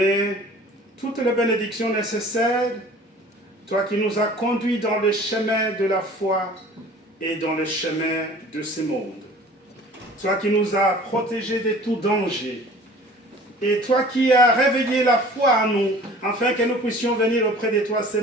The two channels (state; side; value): normal; both; correlation 0.47